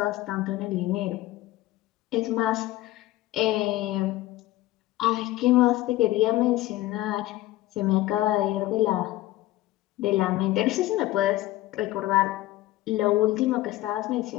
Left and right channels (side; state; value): right; quieter; 16.5 dB